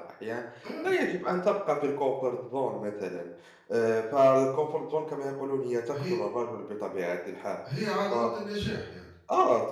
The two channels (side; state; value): both; identical; correlation 1.00